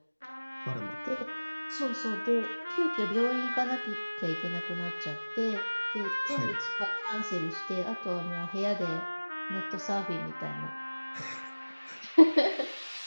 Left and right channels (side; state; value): both; inverted; correlation -1.00